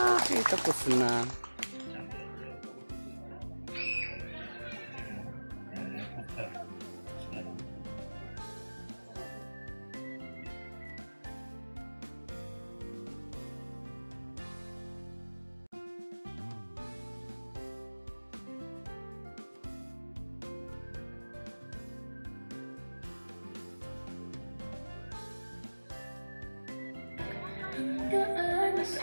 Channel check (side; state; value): both; inverted; correlation -1.00